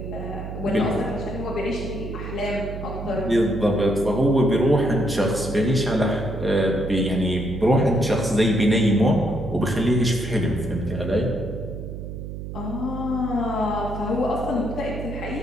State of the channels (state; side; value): noise; right; hum, 8 dB below the sound